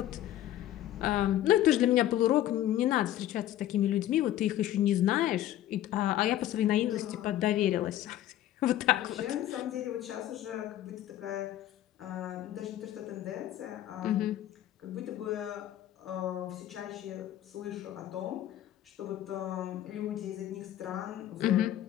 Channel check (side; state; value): right; quieter; 13.0 dB